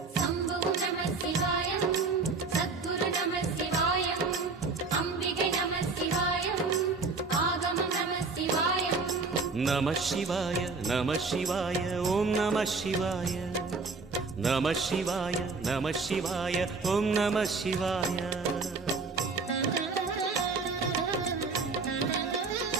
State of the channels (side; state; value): left; quieter; 4.2 dB